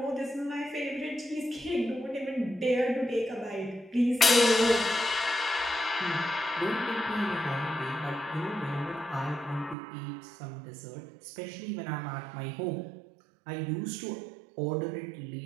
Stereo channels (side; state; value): left; drops out; at 9.8 s